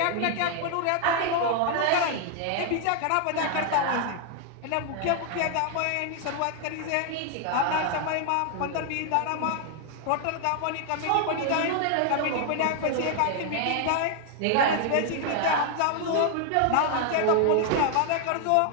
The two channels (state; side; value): different; both; correlation 0.00